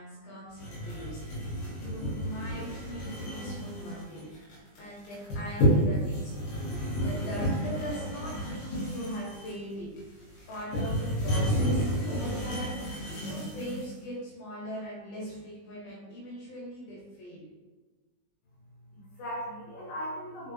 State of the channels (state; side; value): late; right; 20 ms